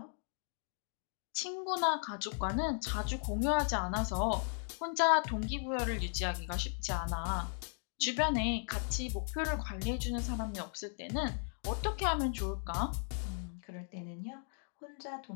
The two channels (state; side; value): silent; right; 53 dB below the other